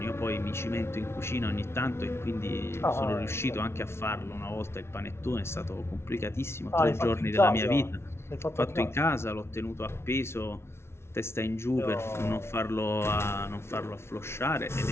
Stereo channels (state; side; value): late; right; 0.12 ms